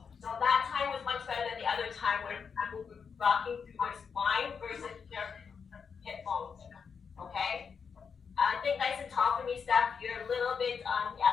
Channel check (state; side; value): quieter; right; 6.2 dB